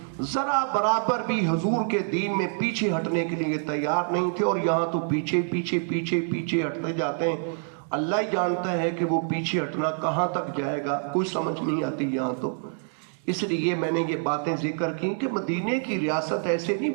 ذرا برابر بھی حضور کے دین میں پیچھے ہٹنے کے لیے تیار نہیں تھے. اور یہاں تو پیچھے پیچھے پیچھے پیچھے ہٹتے جاتے ہیں. اللہ ہی جانتا ہے کہ وہ پیچھے ہٹنا کہاں تک جائے گا، کوئی سمجھ نہیں آتی یہاں تو. اس لیے میں نے یہ باتیں ذکر کی کہ مدینے کی ریاست ایسے نہیں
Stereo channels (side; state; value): left; silent; 61 dB below the other